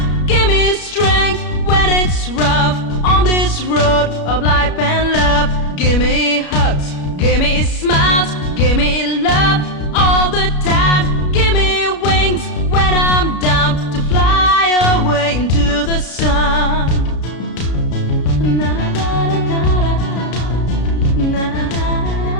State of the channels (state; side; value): late; right; 33 ms